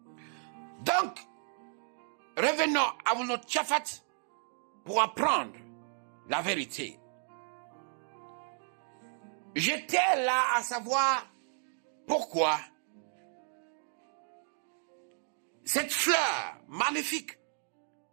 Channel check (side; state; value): left; silent; 55 dB below the other